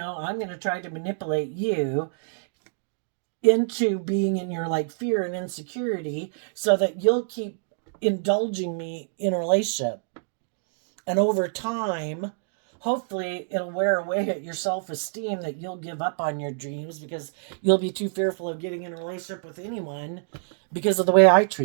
I'm going to try to manipulate you into being in your like fear and insecurity so that you'll keep indulging me in a relationship. And over time, hopefully it'll wear away at your self-esteem that you'll give up on your dreams because you'll be too fearful of getting in a relationship with anyone because of the way I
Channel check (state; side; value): silent; left; digital silence